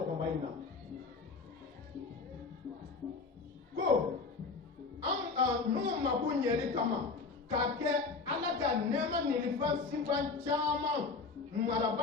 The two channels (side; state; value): right; quieter; 4.4 dB